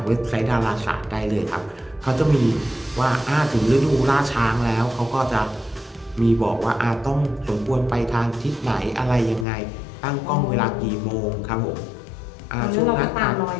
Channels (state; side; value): drops out; right; at 9.5 s